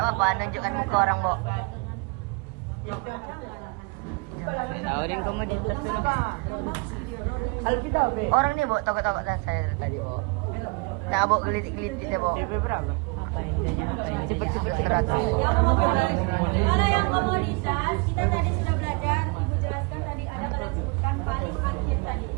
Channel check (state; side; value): quieter; left; 28.5 dB